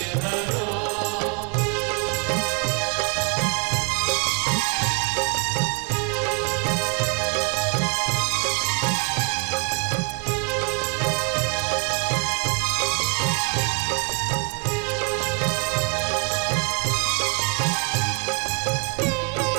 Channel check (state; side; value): quieter; left; 34.8 dB